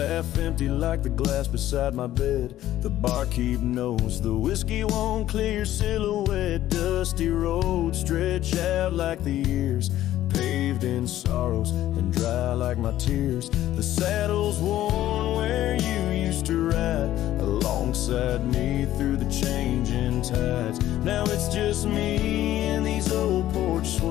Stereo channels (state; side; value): quieter; right; 13.4 dB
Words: empty like the glass beside my bed. The barkeep knows the whiskey won't clear your silhouette. Dusty roads stretch out like the years, paved in sorrows and dry like my tears. The saddle's worn where you used to ride alongside me through the changing tides. Now it's just me and these old porch